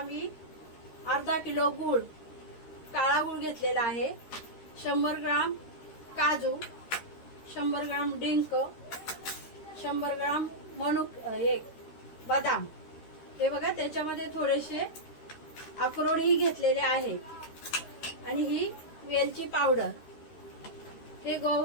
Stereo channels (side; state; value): right; late; 13 ms